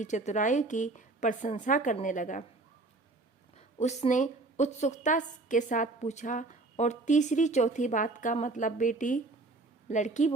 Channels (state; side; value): quieter; left; 3.3 dB